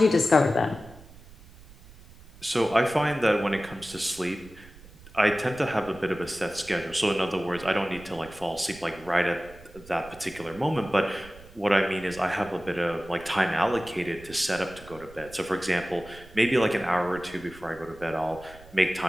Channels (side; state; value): right; noise; rumble, 21 dB below the sound